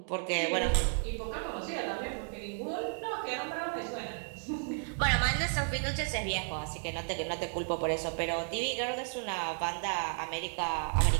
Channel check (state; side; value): silent; left; 56 dB below the other